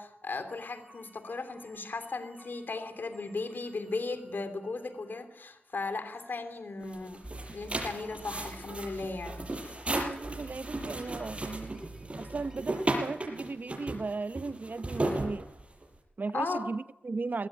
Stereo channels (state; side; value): normal; both; correlation 0.82